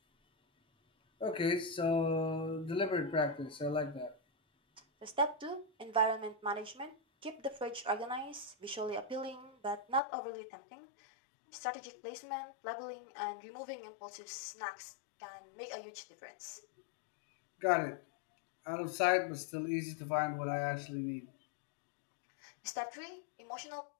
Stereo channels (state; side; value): drops out; right; at 10.0 s